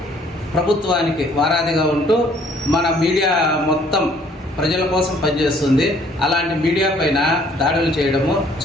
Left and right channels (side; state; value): both; normal; correlation 0.60